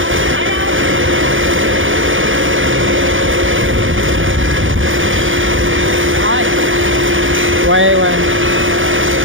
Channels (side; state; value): left; late; 0.57 ms